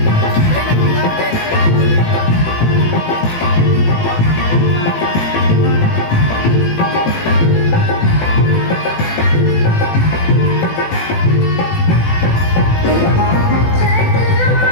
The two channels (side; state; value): right; late; 18 ms